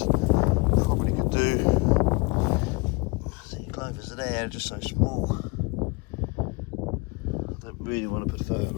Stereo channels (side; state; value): right; quieter; 27.0 dB